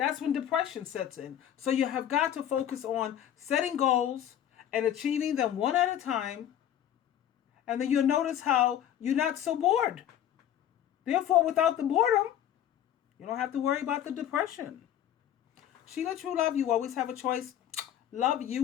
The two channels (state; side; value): quieter; right; 10.6 dB